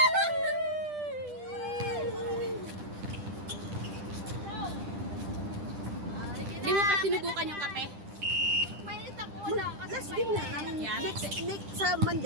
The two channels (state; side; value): late; left; 10 ms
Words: Hindi mo pa sinubukan yung kape? Mainit ako wala. Last game na namin. Yan. Next sa